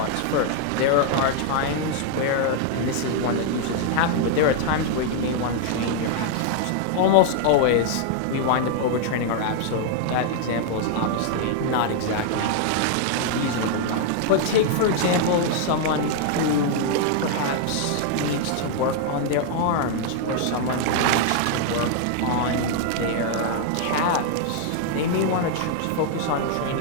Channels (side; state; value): both; different; correlation 0.00